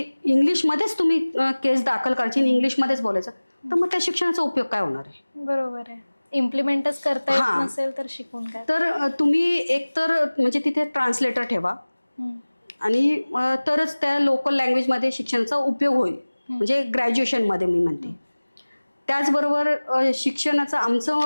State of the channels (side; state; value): both; inverted; correlation -1.00